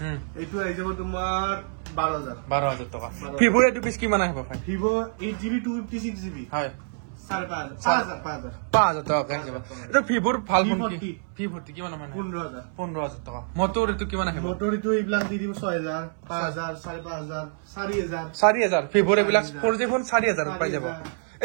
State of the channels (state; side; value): silent; left; 61 dB below the other